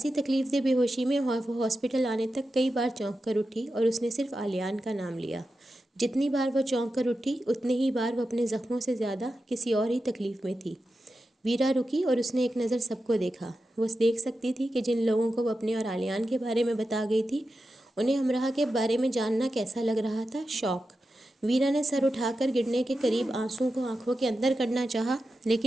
تکلیف دہ بے ہوشی میں وہ ہاسپٹل آنے تک کئی بار چونک کر اٹھی اور اس نے صرف عالیان کا نام لیا۔ جتنی بار وہ چونک کر اٹھی اتنی ہی بار وہ اپنے زخموں سے زیادہ کسی اور ہی تکلیف میں تھی۔ ویرا رکی اور اس نے ایک نظر سب کو دیکھا۔ وہ دیکھ سکتی تھی کہ جن لوگوں کو وہ اپنے اور عالیان کے بارے میں بتا گئی تھی انہیں امرا کے بارے میں جاننا کیسا لگ رہا تھا، شوق۔ ویرا نے سر اٹھا کر گرنے کے قریب آنسوؤں کو آنکھوں کے اندر کرنا چاہا،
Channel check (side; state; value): both; normal; correlation 0.91